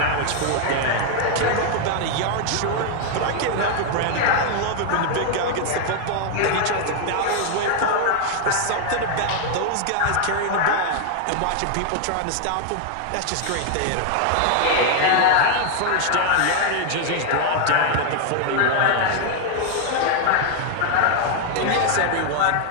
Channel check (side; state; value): both; different; correlation 0.00